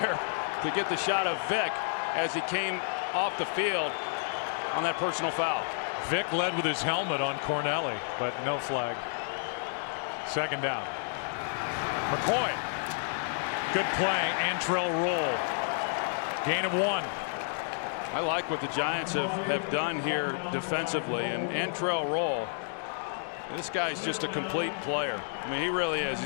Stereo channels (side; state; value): right; silent; digital silence